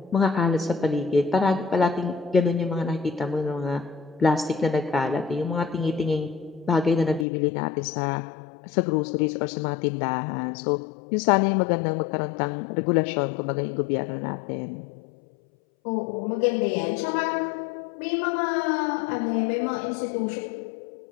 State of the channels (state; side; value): drops out; right; at 7.2 s